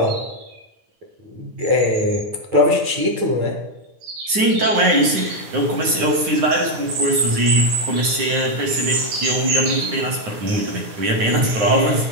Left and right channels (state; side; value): late; left; 9.7 ms